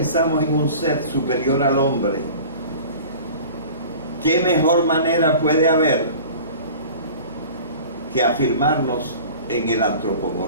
en un ser superior al hombre, ¿qué mejor manera puede haber que afirmarnos en el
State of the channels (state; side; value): inverted; both; correlation -0.41